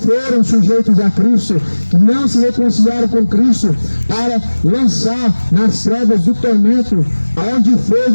sujeitos a Cristo, que não se reconciliaram com Cristo, para lançar nas trevas do tormento, aonde fogo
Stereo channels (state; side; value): inverted; both; correlation -1.00